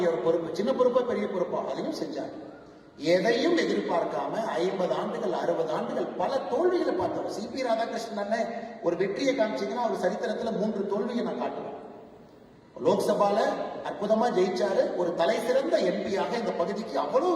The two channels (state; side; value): identical; both; correlation 1.00